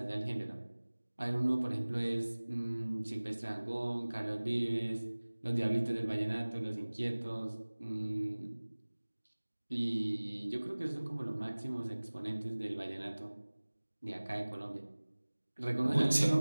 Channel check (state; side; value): inverted; both; correlation -1.00